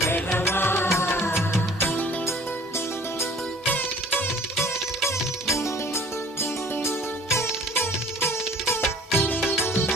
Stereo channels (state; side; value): normal; both; correlation 0.50